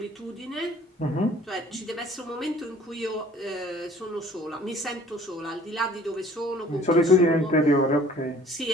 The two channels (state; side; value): normal; both; correlation 0.52